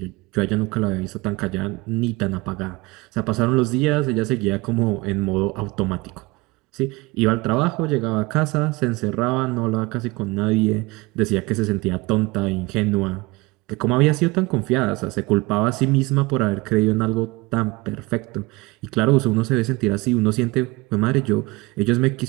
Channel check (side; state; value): left; quieter; 23.5 dB